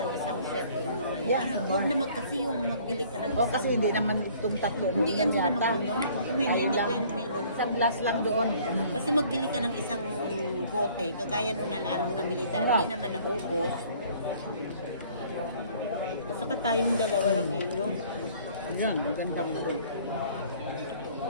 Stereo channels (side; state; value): both; inverted; correlation -0.55